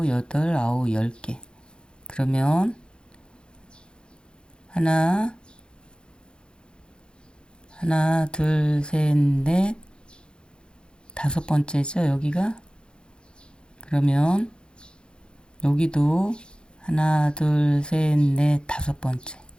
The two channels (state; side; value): late; right; 0.050 ms